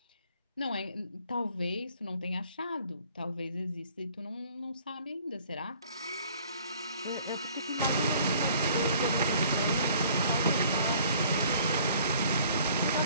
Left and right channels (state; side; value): inverted; both; correlation -0.56